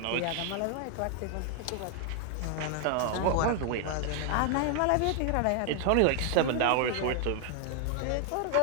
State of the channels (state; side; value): different; both; correlation 0.00